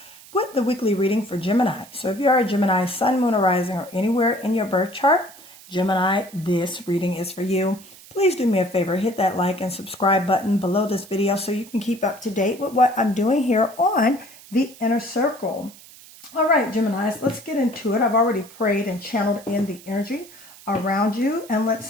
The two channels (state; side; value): noise; right; hiss, 21 dB below the sound